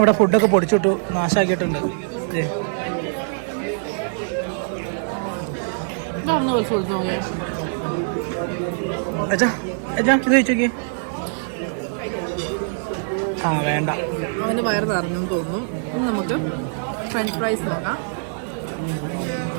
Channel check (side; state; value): left; silent; 63 dB below the other